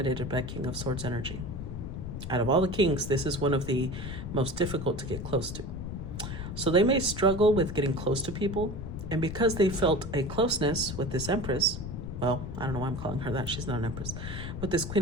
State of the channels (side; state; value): left; noise; rumble, 7 dB below the sound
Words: by King of Swords energy. Out of all the kings, this is one of the most difficult to get close to. So they may struggle with getting close to people. And because they felt a closeness with this Empress, well, I don't know why I'm calling her that. She's not an Empress. With this